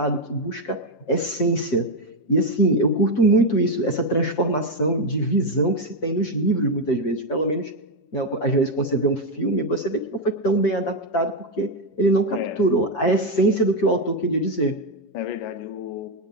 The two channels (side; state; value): right; late; 6.4 ms